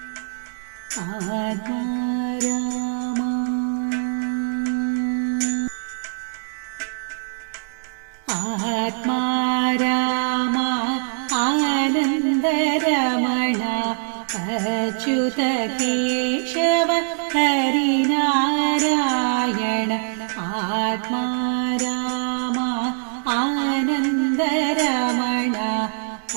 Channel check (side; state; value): left; silent; digital silence